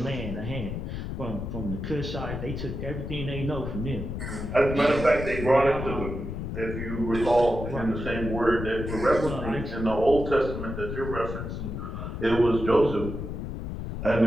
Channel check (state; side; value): noise; left; rumble, 5 dB below the sound